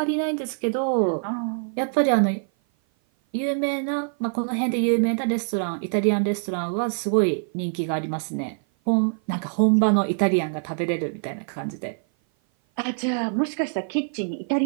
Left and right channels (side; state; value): left; silent; 56 dB below the other